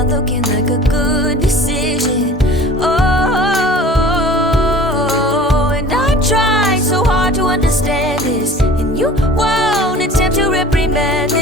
looking like a good decision. Oh, and I try so hard to understand this, and you won't attempt to reprimand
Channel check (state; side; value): normal; both; correlation 0.44